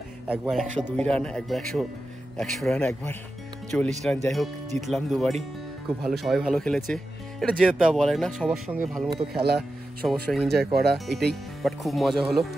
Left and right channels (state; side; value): normal; both; correlation 0.91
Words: একবার 102 রান, একবার 100 রান, একবার 40 রান। যাই হোক, জিতলাম দুবারই। খুব ভালো, সবাই ভালো খেলেছে। এটা জেতা বলে না, সবার সঙ্গে ভালো মতো খেলা, সবার সঙ্গে এনজয় করা, এটাই। বাট খুব মজা হলো,